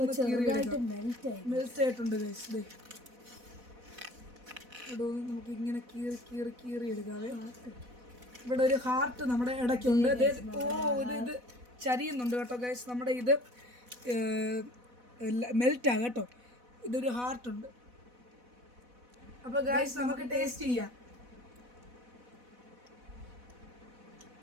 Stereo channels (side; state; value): left; late; 4.1 ms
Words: ഒന്ന് മെൽറ്റ് ആയിട്ടുണ്ട് ഗൈസ്. ഇവിടെ ഒന്ന് നമുക്ക് ഇങ്ങനെ കീറി എടുക്കാതെ. ഇവിടെ ഒരു ഹാർട്ട് നമ്മുടെ ഇടയ്ക്കുണ്ട്. ഇത് ചരിയുന്നുണ്ട് കേട്ടോ ഗൈസ്. നമ്മുടെ ഇത് മെൽറ്റാ കേട്ടോ. ഇതൊരു ഹാർട്ടുണ്ട്. അപ്പോൾ ഗൈസ് നമുക്ക് ടേസ്റ്റ് ചെയ്യാം.